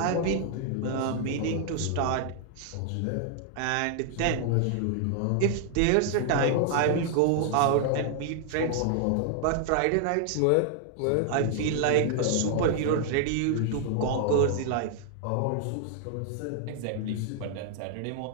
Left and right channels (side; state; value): both; different; correlation 0.00